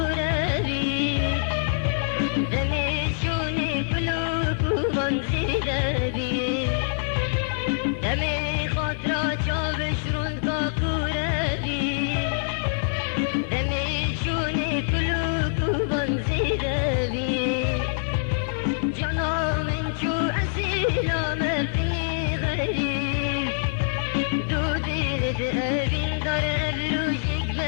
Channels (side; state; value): right; silent; digital silence